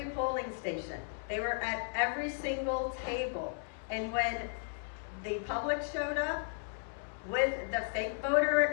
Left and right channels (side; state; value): right; silent; 54 dB below the other